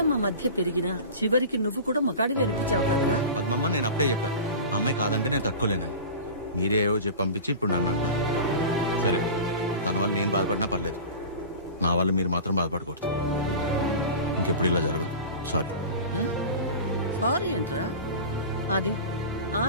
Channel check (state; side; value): inverted; both; correlation -0.33